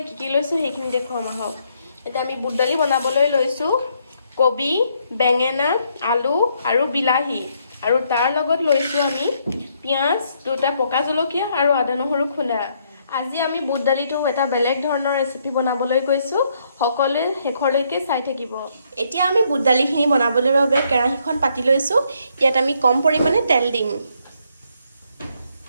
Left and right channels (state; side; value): inverted; both; correlation -0.72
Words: কি কি লৈছো সেইখিনি দেখুৱাম আহক। এতিয়া আমি বুট দালি বনাবলৈ লৈছো কবি, বেঙেনা, আলু আৰু বিলাহী, আৰু তাৰ লগত লৈছো আমি পিঁয়াজ, দুটা পকা জলকীয়া আৰু আদা নহৰু খুন্দা। আজি আমি বুট দালিটো এটা বেলেগ ধৰণৰ ৰেচিপি বনাবলৈ গৈছো। সকলোৱে শেষলৈকে চাই থাকিব। এতিয়া আমি বুট দালিখিনি বনাবলৈ বাবে কেৰাহীখন পাতি লৈছো। ইয়াত আমি কম পৰিমাণে তেল দিম।